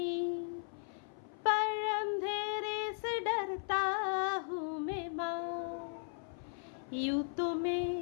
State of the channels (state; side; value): silent; right; 53 dB below the other